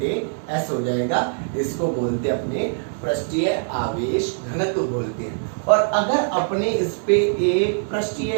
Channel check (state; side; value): silent; left; 64 dB below the other